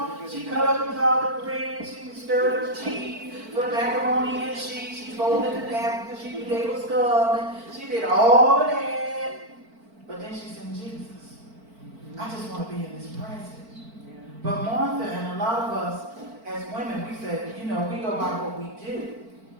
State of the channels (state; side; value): late; left; 4.5 ms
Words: She cut up the collard greens. She stirred up the cheese, put the macaroni in the sheet. She folded the napkins because she knew they was coming. She did all of that. But then she said, Jesus, I just want to be in His presence. But Martha and a lot of us as women, we said, we go by what we do.